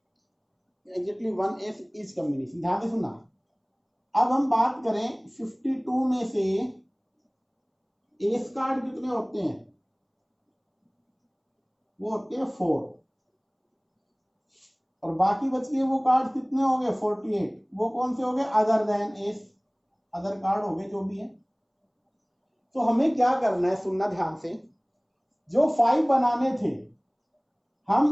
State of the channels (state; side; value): identical; both; correlation 1.00